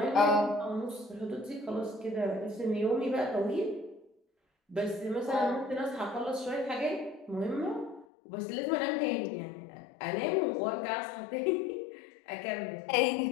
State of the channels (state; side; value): drops out; right; at 8.1 s